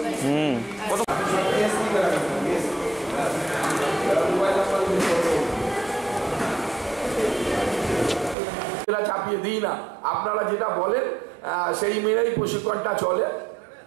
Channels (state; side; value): drops out; left; at 8.3 s